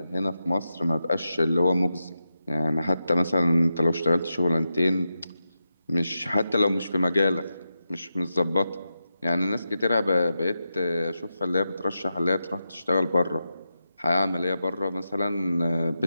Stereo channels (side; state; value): both; inverted; correlation -0.89